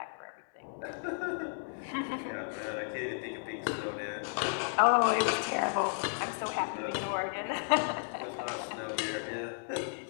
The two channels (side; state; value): right; silent; digital silence